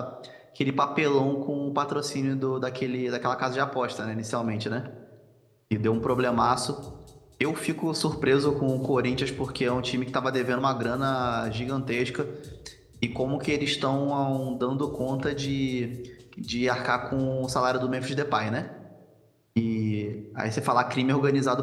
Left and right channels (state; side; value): identical; both; correlation 1.00